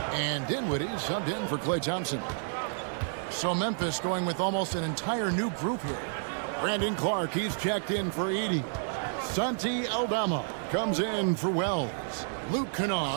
And Dinwiddie subbed in for Klay Thompson. So Memphis going with almost an entire new group here. Brandon Clark, he's checked in for Edey. Santi Aldama comes in for Wells. Luke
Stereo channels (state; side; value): silent; left; 58 dB below the other